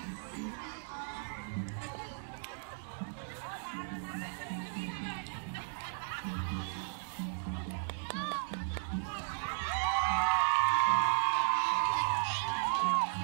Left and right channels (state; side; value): silent; left; digital silence